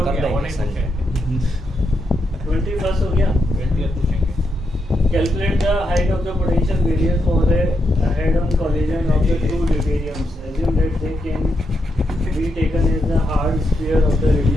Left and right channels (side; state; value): both; normal; correlation 0.82